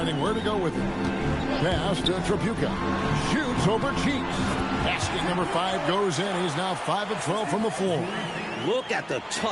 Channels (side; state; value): both; identical; correlation 1.00